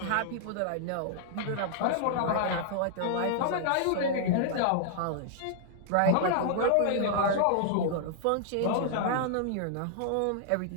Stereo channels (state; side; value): different; both; correlation -0.01